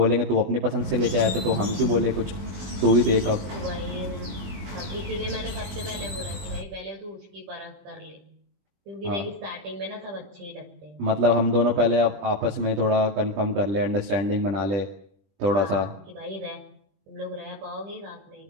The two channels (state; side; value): late; left; 21 ms